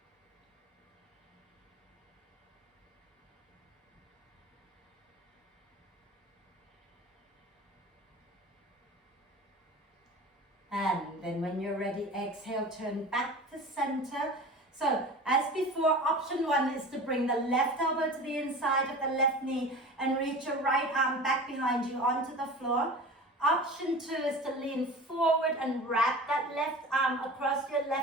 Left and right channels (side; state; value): both; normal; correlation 0.36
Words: And then when you're ready, exhale, turn back to center. So as before, option one is to bring the left elbow to the inside of the left knee and reach your right arm back behind you onto the floor. Option two is to lean forward and wrap that left arm across your